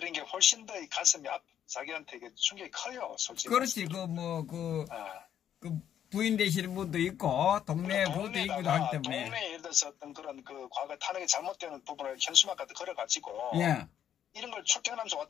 게 훨씬 더 가슴이 자기한테 충격이 커요, 솔직히. 그렇지. 부인 되시는 분도 있고 동네 부도 있기도 하기 때문에 동네에 예를 들어서 어떤 그런 과거 탄핵이 잘못되는 부분을 현수막까지 걸어가지고 이런 걸 출퇴근하면서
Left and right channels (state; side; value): quieter; right; 9.8 dB